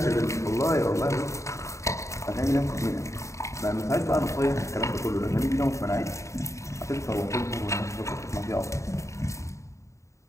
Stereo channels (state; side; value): late; right; 0.14 ms